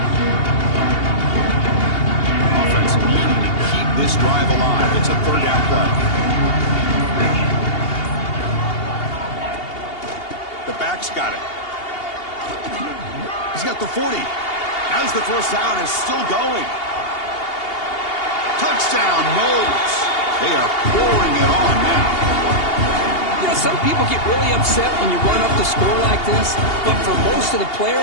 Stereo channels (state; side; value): late; right; 2.8 ms